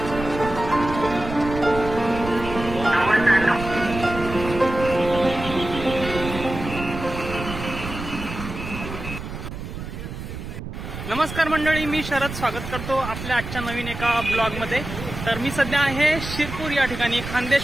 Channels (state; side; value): noise; right; rumble, 8 dB below the sound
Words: नमस्कार मंडळी, मी शरद स्वागत करतो आपल्या आजच्या नवीन एका ब्लॉग मध्ये। तर मी सध्या आहे शिरपूर या ठिकाणी।